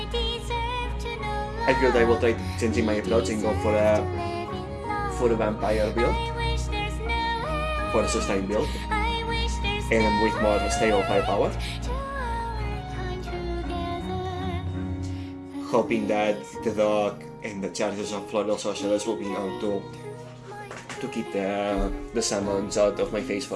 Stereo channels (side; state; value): both; identical; correlation 1.00